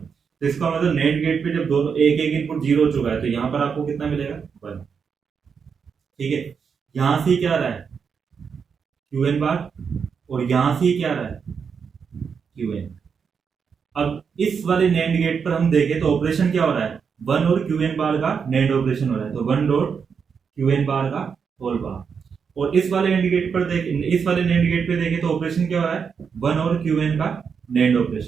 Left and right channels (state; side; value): quieter; left; 6.3 dB